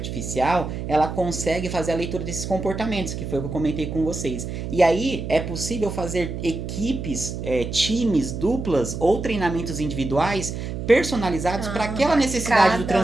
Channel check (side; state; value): right; noise; hum, 6 dB below the sound